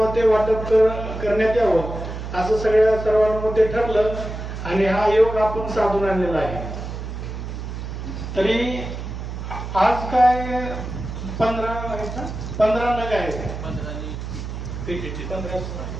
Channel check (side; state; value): right; noise; hum, 7 dB below the sound